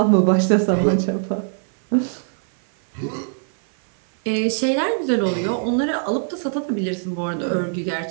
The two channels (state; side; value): silent; left; 59 dB below the other